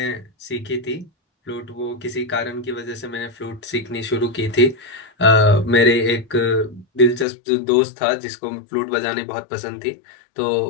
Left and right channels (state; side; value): drops out; right; at 7.2 s